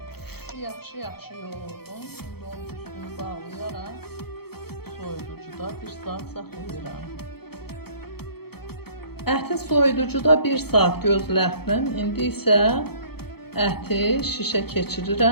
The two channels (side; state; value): right; late; 0.96 ms